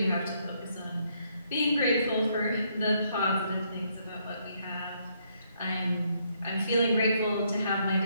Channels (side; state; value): both; inverted; correlation -0.72